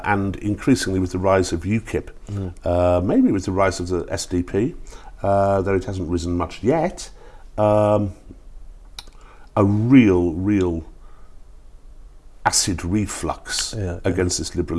increasingly with the rise of UKIP, maybe with the rise of the SDP, though it hasn't risen much yet, a real acid reflux against this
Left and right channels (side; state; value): both; identical; correlation 1.00